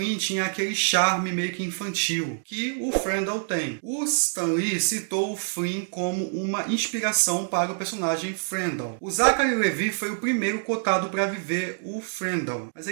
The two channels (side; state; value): left; silent; digital silence